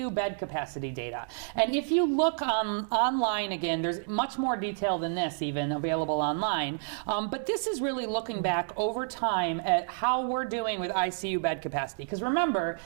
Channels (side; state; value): left; silent; digital silence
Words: bed capacity data. And if you look online, again, there's much more detail than this even available online. But this is really looking back over time at how we're doing with ICU bed capacity. Because remember,